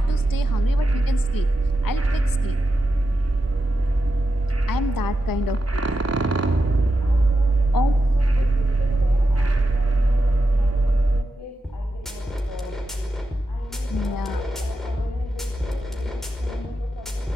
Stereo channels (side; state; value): both; normal; correlation 0.89